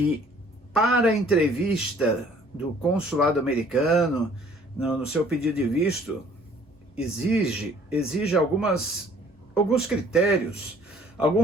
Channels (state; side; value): normal; both; correlation 0.57